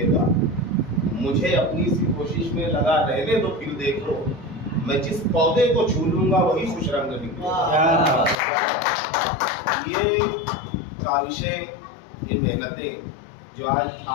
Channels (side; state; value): right; drops out; at 8.3 s